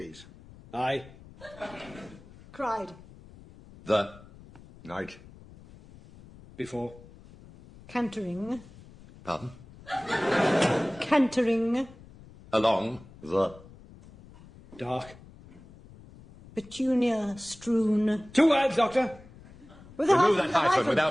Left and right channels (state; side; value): noise; left; rumble, 21 dB below the sound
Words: Aye. Cried. The. Night. Before. Cantering. Pardon? Cantering. Along. The. Dark. Petunia strewn. 2 words, Doctor. With a Remove hyphen, that hyphen hyphen.